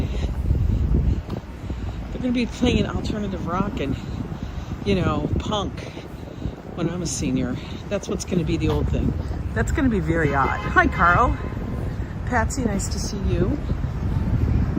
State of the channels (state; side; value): identical; both; correlation 1.00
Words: They're going to be playing alternative rock and, you know, punk when I'm a senior. That's what's going to be the old thing. That's going to be very odd. Hi, Carl. Patsy, nice to see you.